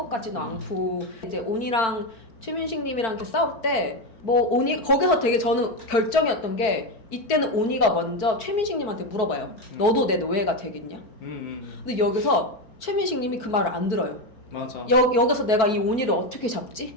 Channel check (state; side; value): late; right; 4.6 ms